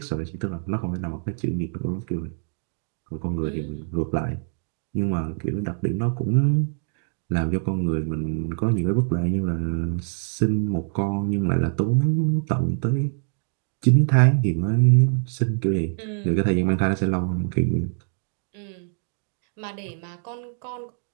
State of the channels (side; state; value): left; silent; digital silence